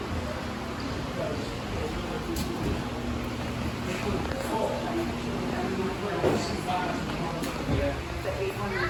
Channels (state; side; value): identical; both; correlation 1.00